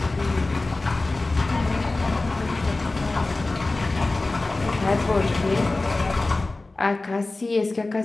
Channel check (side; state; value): right; quieter; 3.2 dB